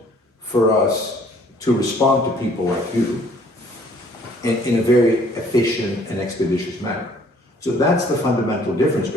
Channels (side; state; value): both; normal; correlation 0.59